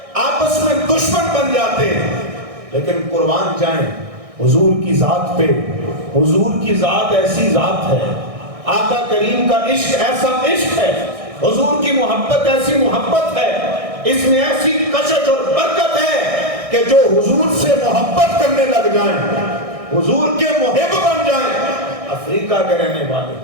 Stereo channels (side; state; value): left; late; 1.6 ms